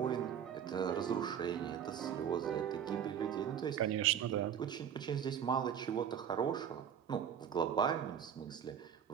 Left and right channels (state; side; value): quieter; left; 8.7 dB